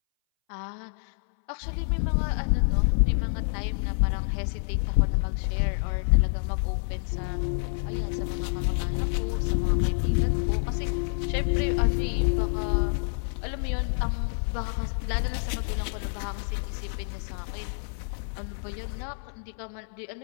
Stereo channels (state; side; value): silent; right; 60 dB below the other